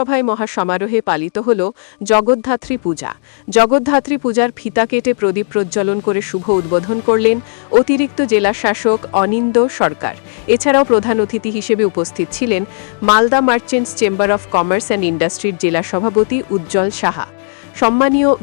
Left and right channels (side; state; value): right; silent; digital silence